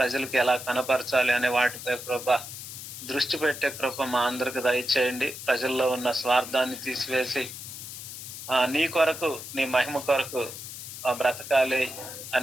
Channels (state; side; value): noise; left; hiss, 10 dB below the sound